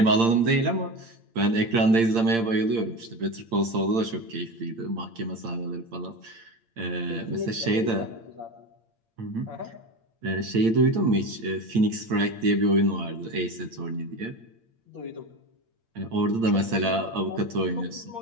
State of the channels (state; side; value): late; left; 8.7 ms